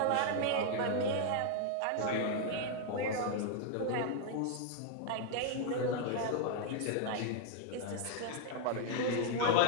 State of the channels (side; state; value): both; different; correlation 0.00